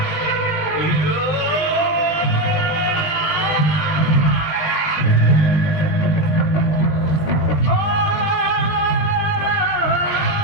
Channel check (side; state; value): right; late; 20 ms